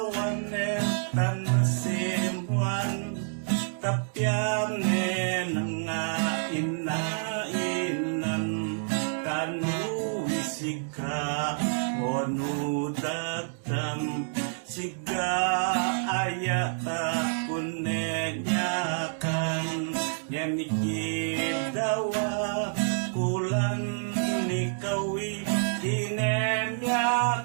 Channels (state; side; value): silent; left; digital silence